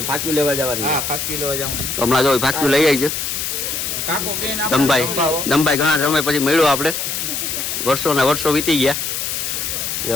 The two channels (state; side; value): noise; left; hiss, 3 dB below the sound